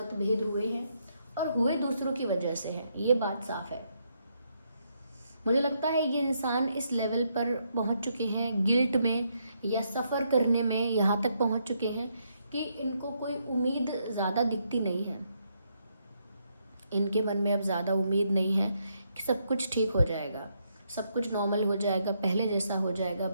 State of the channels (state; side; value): inverted; both; correlation -0.77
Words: हुए हैं और हुए दूसरों की वजह से हैं, ये बात साफ है। मुझे लगता है ये इंसान इस लेवल पर पहुंच चुके हैं, गिल्ट में या सफ़र करने में यहाँ तक पहुंच चुके हैं कि इनको कोई उम्मीद ज़्यादा दिखती नहीं है। इनके मन में अब ज़्यादा उम्मीद नहीं है कि सब कुछ ठीक हो जाएगा, सब कुछ नॉर्मल हो जाएगा, पहले जैसा हो जाएगा,